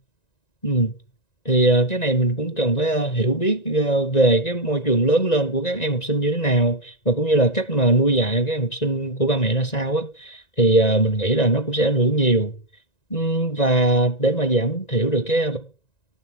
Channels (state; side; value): late; right; 1.9 ms